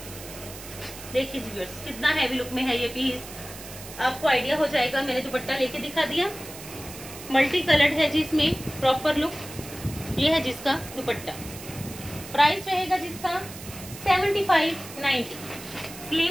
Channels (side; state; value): right; noise; hiss, 14 dB below the sound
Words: देखिए जी व्यूअर्स कितना हैवी लुक में है ये पीस, आपको आइडिया हो जाएगा। मैंने दुपट्टा लेके दिखा दिया, मल्टी कलर्ड है जी इसमें प्रॉपर लुक। ये है जिसका दुपट्टा, प्राइस रहेगा जिसका 75-90।